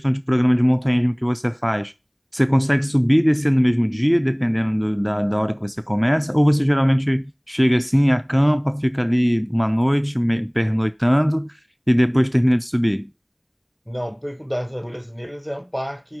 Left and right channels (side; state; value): both; identical; correlation 1.00